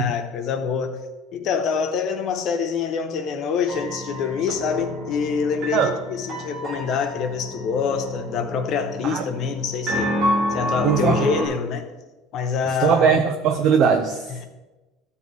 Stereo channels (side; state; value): both; normal; correlation 0.44